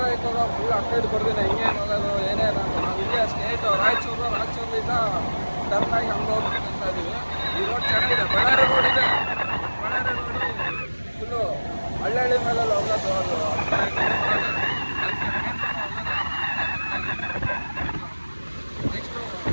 ಹೋಗೋ ಫುಲ್ ಅಪ್ಡೇಟ್ ಬರ್ತೀನಿ, ಹಿಂಗೇನು ಹೋಗೋದು ಏನೇನು ಅಂತ. ನಾವು ಇಲ್ಲೇ ಸ್ಟೇಟ್ ರಾಯಚೂರಿಂದ ಟರ್ನಾಗಿ ಹಂಗೆ ಹೋಗ್ಬೇಕಂತ ಇದ್ದೀವಿ. ಈ ರೋಡ್ ಚೆನ್ನಾಗಿದೆ, ಬಳ್ಳಾರಿ ರೋಡ್ ಇದೆ. ಬಳ್ಳಾರಿ ರೋಡು ಫುಲ್ಲು ಹಳ್ಳಿ ಮೇಲೆಲ್ಲ ಹೋಗೋದು. ಅದು ನೆಕ್ಸ್ಟು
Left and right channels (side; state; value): both; inverted; correlation -1.00